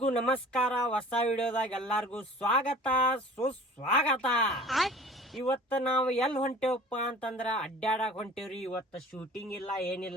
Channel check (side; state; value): both; normal; correlation 0.45